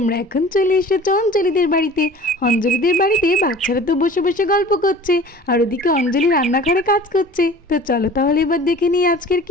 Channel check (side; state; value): both; normal; correlation 0.44